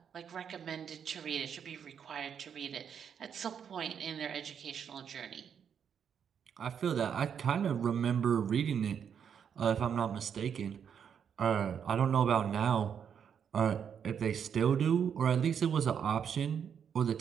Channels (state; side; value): quieter; left; 7.7 dB